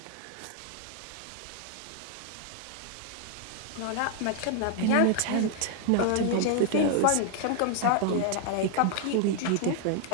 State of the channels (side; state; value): both; different; correlation 0.00